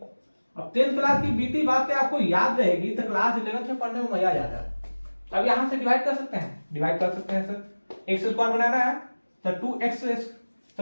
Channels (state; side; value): inverted; both; correlation -1.00